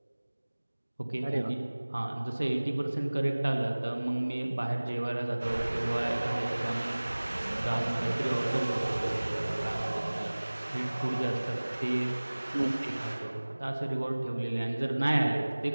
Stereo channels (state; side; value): inverted; both; correlation -1.00